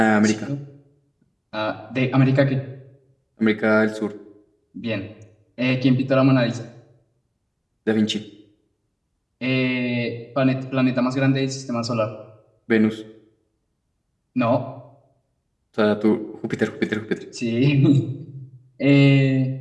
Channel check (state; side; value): identical; both; correlation 1.00